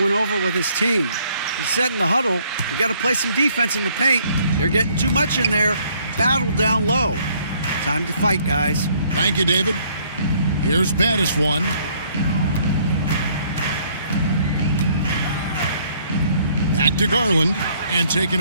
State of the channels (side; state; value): both; inverted; correlation -0.64